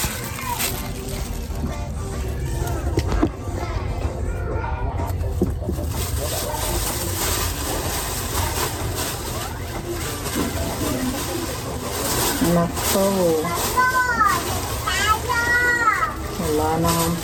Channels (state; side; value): identical; both; correlation 1.00